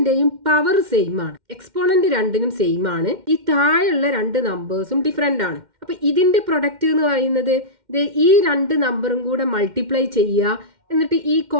പവർ സെയിം ആണ്. എക്സ്പോണന്റ് രണ്ടിനും സെയിം ആണ്. ഈ താഴെയുള്ള 2 നമ്പേഴ്സും ഡിഫറെന്റ് ആണ്. അപ്പൊ ഇതിന്റെ പ്രൊഡക്റ്റ് എന്ന് പറയുന്നത് ഈ 2 നമ്പറും കൂടെ മൾട്ടിപ്ലൈ ചെയ്യുക, എന്നിട്ട് ഈ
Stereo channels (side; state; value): left; late; 2.1 ms